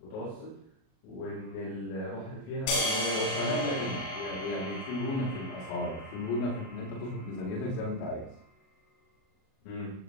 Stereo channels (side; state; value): right; late; 37 ms